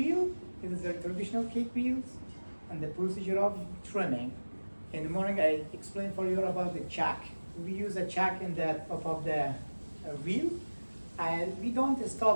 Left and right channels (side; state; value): both; inverted; correlation -1.00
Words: It is a traditional cake wheels and the procedure of trimming. In the morning, I explained for you about the chuck. We use a chuck in the top of the wheel. And we don't